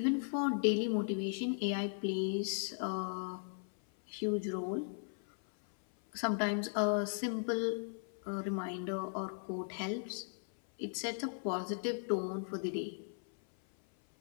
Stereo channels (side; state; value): right; silent; 53 dB below the other